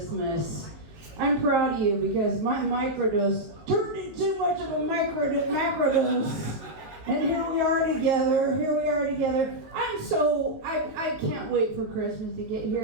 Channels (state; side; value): late; left; 19 ms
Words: I'm proud of you because my microdose turned into too much of a macrodose. And here we are together. I can't wait for Christmas to get